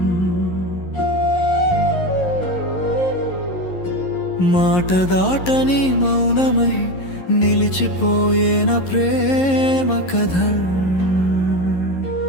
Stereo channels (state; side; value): late; right; 11 ms